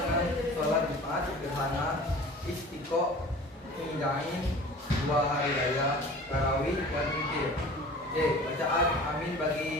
sholat Jumat, gerhana, istiqo, hidain, 2 hari raya, tarawih, dan witir. D. Bacaan amin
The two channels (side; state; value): both; normal; correlation 0.41